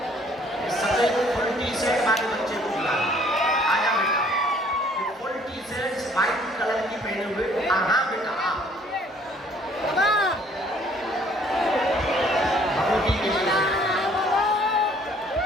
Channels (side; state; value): both; normal; correlation 0.59